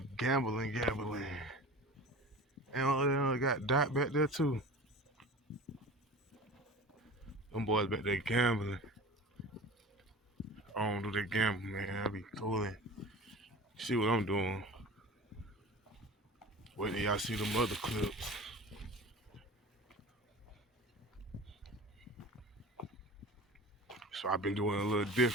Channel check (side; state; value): both; normal; correlation 0.36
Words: gambling. And they got Dot back there too. Them boys back there gambling. I don't do that gambling, man. I be cooling. See what I'm doing. Wait till y'all see them other clips. So I've been doing a little